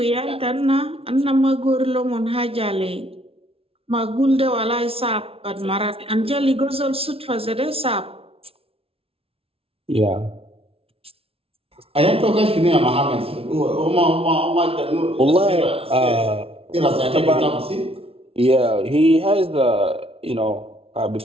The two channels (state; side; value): late; left; 0.27 ms